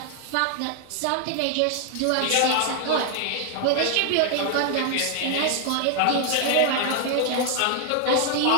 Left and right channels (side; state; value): both; different; correlation 0.00